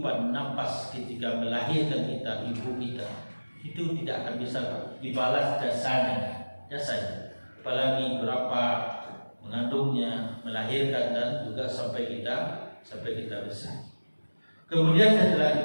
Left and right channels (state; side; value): inverted; both; correlation -1.00